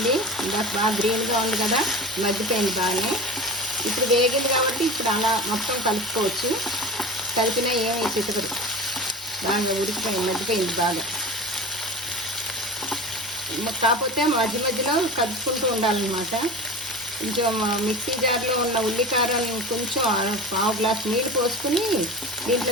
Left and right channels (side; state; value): both; normal; correlation 0.31